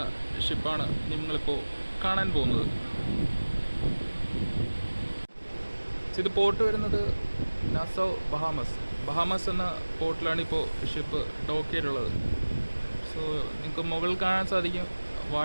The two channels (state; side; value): inverted; both; correlation -1.00